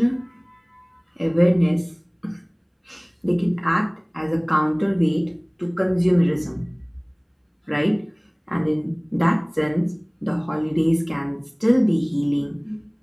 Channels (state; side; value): identical; both; correlation 1.00